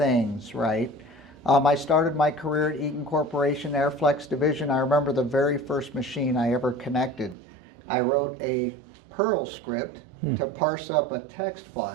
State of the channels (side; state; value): left; drops out; at 7.4 s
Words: right? I started my career at Eaton Corporation, Airflex Division. I remember the very first machine I ever connected. I wrote a Perl script to parse up a text